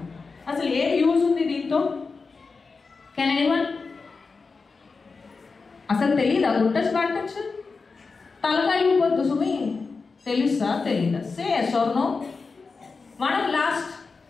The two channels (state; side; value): quieter; right; 4.4 dB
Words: అసలు ఏ యూజ్ ఉంది దీంతో? Can anyone? అసలు తెలీదా గుడ్ టచ్ బ్యాడ్ టచ్? తలకాయ పొద్దు సుమి తెలుసా తెలీదా? Say yes or no. మనం లాస్ట్